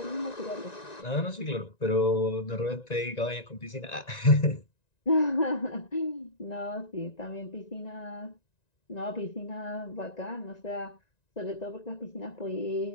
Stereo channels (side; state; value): right; late; 1.9 ms